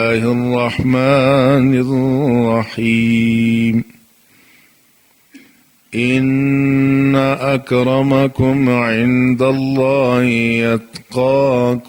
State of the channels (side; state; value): both; identical; correlation 1.00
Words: الرحمن الرحيم إن أكرمكم عند الله